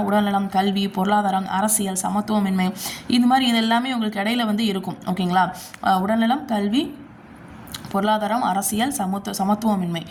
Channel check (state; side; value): identical; both; correlation 1.00